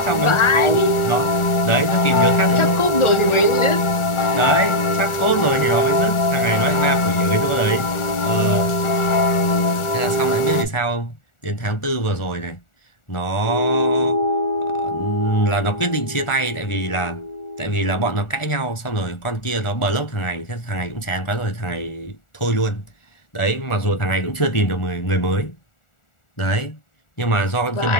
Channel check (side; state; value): right; late; 1.4 ms